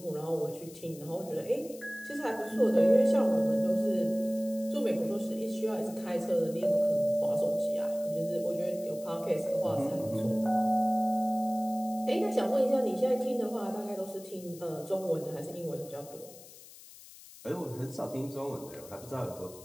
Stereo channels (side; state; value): left; noise; hiss, 19 dB below the sound